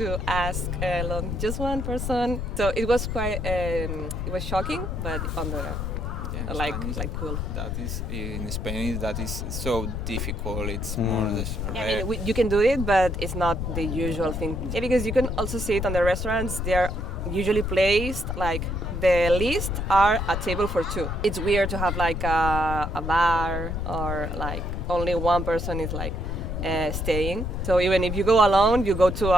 ask alone just one person. So it was quite, it was shocking, but on the like cool. That is in Spanish. That is so difficult. It's more Yeah, I mean, you can do it, but it's not the usual thing. Yeah, because you can also see it on the restaurants. They're usually placed like the list are a table for 2. It's weird to have like a bar or like only one person is like staying. So even if you go alone, you go to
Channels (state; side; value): noise; left; rumble, 3 dB below the sound